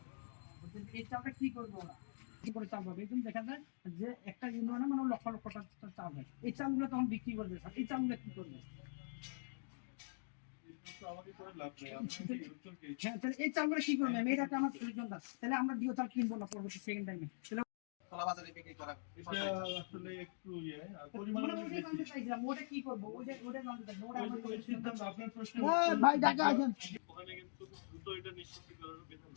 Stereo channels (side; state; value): right; silent; digital silence